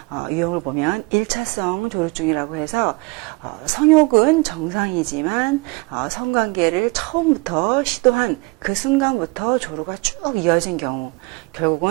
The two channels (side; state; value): left; quieter; 26.9 dB